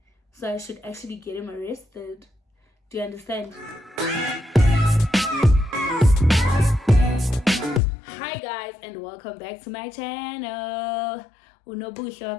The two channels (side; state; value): right; drops out; at 7.8 s